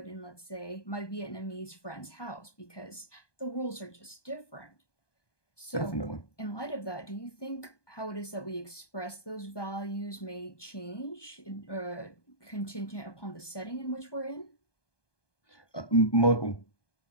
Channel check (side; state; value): right; late; 1.2 ms